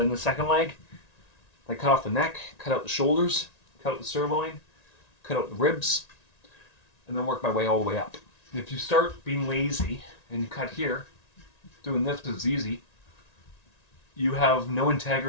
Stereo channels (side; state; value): right; late; 1.9 ms